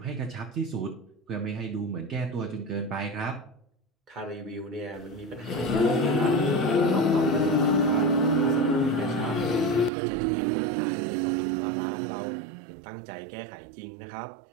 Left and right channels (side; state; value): left; drops out; at 9.9 s